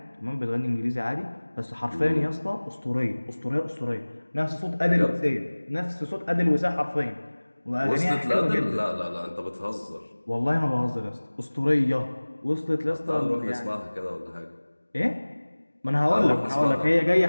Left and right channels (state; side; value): inverted; both; correlation -1.00